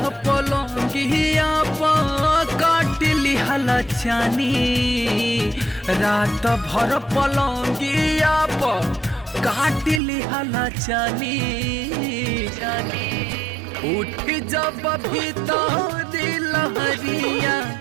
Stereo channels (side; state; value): left; drops out; at 10.0 s